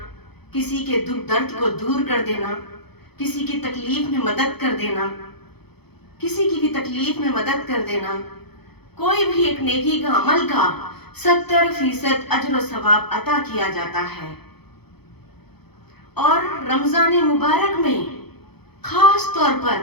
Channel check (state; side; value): late; right; 0.98 ms